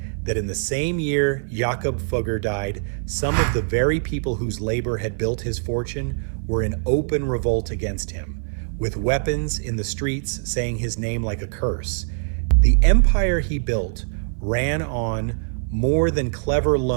that in the same year Jakob Fugger died, some of the very people whose labor had built his fortune were in open revolt against him, with weapons in the streets saying his name like a curse. The empire he built ran on more than clever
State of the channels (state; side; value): silent; left; 56 dB below the other